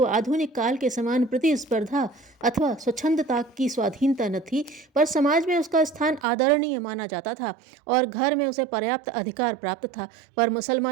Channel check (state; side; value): drops out; left; at 6.2 s